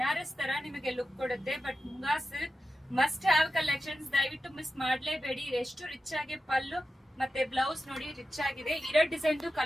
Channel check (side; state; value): both; normal; correlation 0.92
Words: ತರ ನಿಮಗೆ ಲುಕ್ ಕೊಡುತ್ತೆ. But munga silk must have collections, ದಯವಿಟ್ಟು ಮಿಸ್ ಮಾಡ್ಲೇಬೇಡಿ. ಎಷ್ಟು ರಿಚ್ ಆಗಿ ಪಲ್ಲು ಮತ್ತೆ ಬ್ಲೌಸ್ ನೋಡಿ ರಿಚ್ ಆಗಿದೆ. ಇರೋ ಡಿಸೈನ್